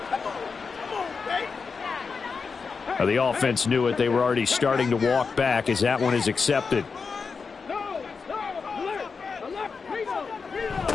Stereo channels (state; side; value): quieter; right; 5.1 dB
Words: The offense knew it. They were already starting to walk back as that one is accepted.